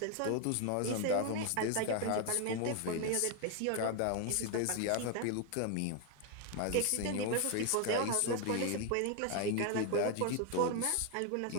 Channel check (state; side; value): different; both; correlation 0.01